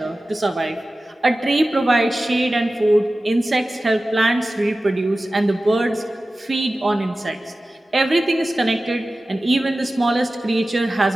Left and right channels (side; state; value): both; normal; correlation 0.96